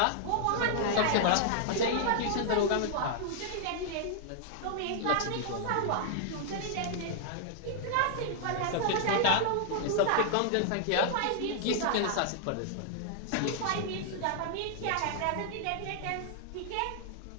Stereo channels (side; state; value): both; different; correlation -0.01